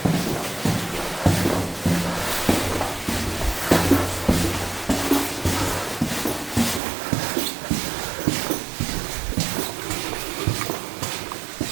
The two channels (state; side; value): drops out; left; at 6.8 s